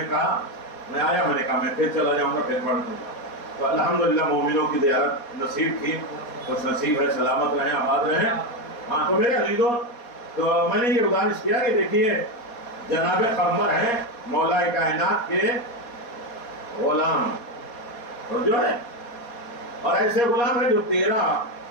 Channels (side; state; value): right; late; 4.2 ms